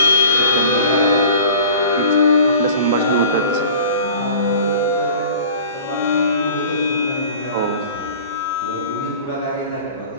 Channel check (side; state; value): both; inverted; correlation -0.43